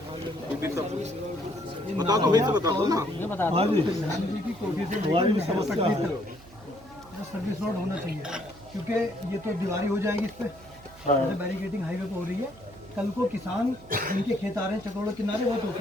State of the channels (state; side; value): noise; right; hum, 22 dB below the sound